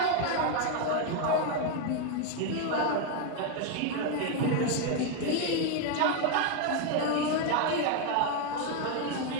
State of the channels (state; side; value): different; both; correlation 0.01